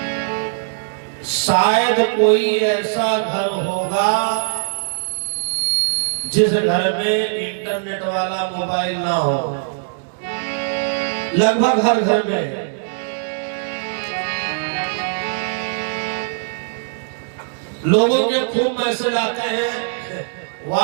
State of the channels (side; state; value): left; silent; digital silence